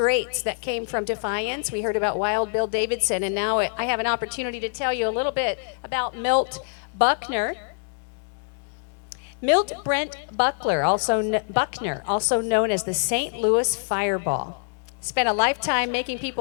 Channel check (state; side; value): silent; right; digital silence